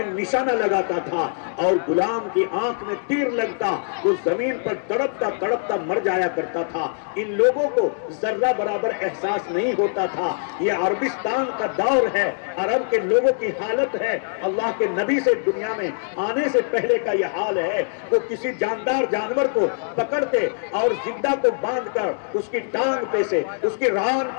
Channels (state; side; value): silent; right; digital silence